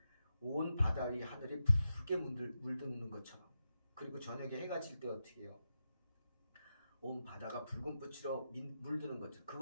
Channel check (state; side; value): inverted; both; correlation -0.88